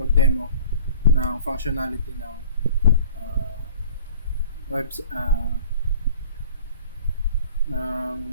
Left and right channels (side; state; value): both; inverted; correlation -0.47